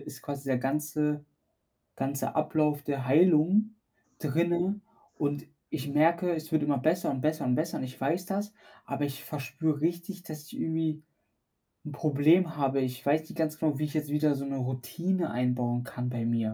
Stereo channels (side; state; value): both; identical; correlation 1.00